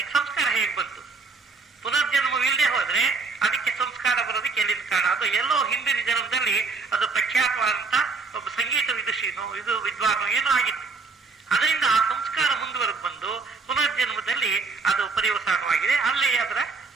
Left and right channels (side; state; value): left; quieter; 4.3 dB